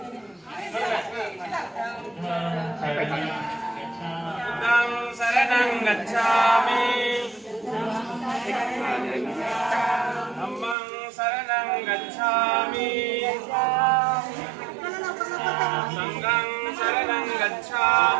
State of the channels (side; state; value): left; drops out; at 10.8 s